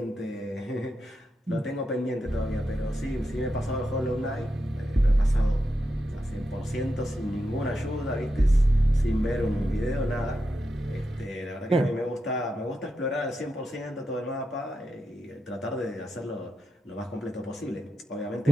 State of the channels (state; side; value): normal; both; correlation 0.87